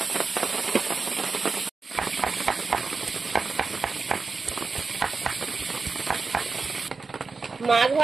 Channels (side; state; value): left; quieter; 4.3 dB